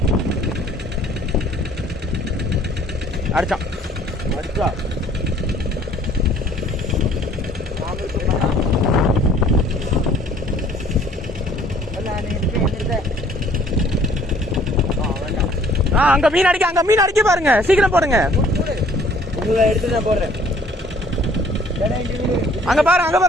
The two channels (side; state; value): both; normal; correlation 0.57